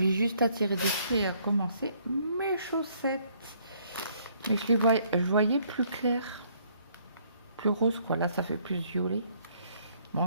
juste à tirer dessus et à commencer mes chaussettes. Mais je voyais plus clair. Plus rose, quoi. Là, ça fait plus violet.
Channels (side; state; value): both; inverted; correlation -0.66